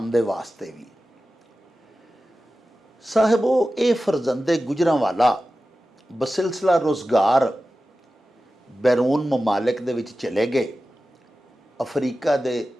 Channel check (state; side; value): normal; both; correlation 0.94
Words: ਦੇ ਵਾਸਤੇ ਵੀ। ਸਾਹਿਬੋ, ਇਹ ਫਰਜ਼ੰਦੇ ਗੁਜਰਾਂਵਾਲਾ ਬਸਿਲਸਿਲਾ ਰੁਜ਼ਗਾਰ ਬੈਰੂਨ ਮਮਾਲਿਕ ਦੇ ਵਿੱਚ ਚਲੇ ਗਏ। ਅਫਰੀਕਾ ਦੇ